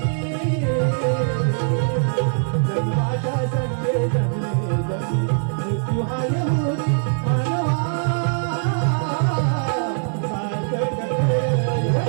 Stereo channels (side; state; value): left; silent; digital silence